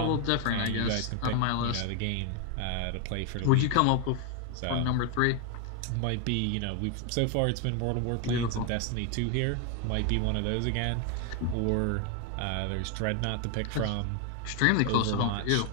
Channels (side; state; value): both; different; correlation 0.01